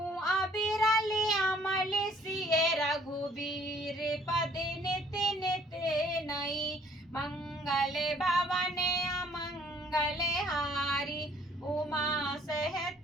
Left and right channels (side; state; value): both; normal; correlation 0.60